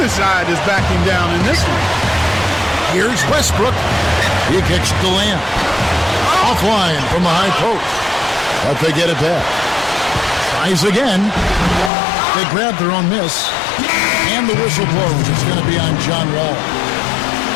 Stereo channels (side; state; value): right; drops out; at 11.9 s